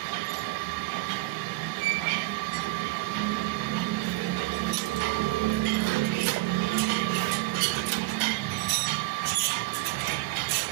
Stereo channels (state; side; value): quieter; left; 20.3 dB